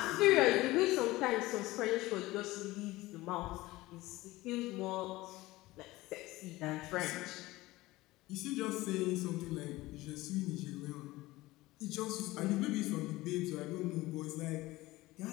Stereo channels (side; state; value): right; quieter; 19.0 dB